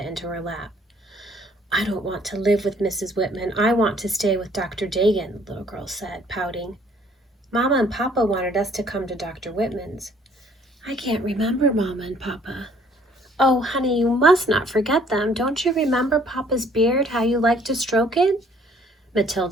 into her lap. "I don't want to live with Mrs. Whitman. I want to stay with Dr. Dagan," the little girl said, pouting. "Mama and Papa wanted us to come to Dr. Whitman's." "I can't remember Mama and Papa." "Oh, honey, you must not forget them. Don't you remember Papa's beard, how you liked to stroke it?"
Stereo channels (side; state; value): both; normal; correlation 0.60